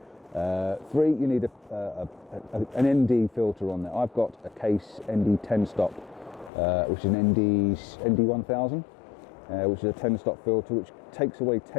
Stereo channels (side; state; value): right; drops out; at 6.5 s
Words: 3, you need an ND filter on there. I've got a Case ND 10 stop. Which is an ND 1000, which is a 10 stop filter which takes away